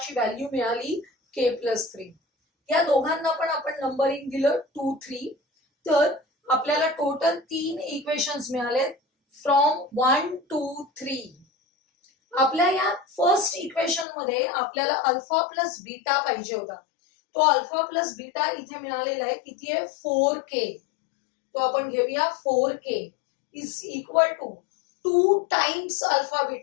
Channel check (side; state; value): right; drops out; at 14.1 s